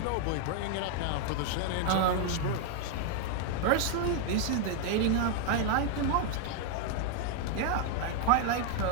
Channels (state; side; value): different; both; correlation 0.00